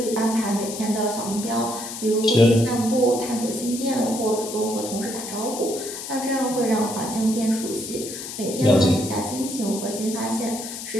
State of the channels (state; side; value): noise; left; hiss, 9 dB below the sound